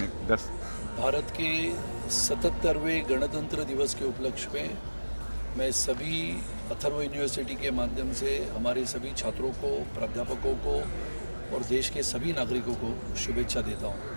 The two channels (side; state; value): both; inverted; correlation -1.00